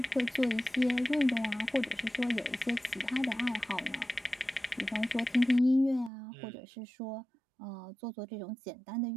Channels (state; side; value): drops out; left; at 6.1 s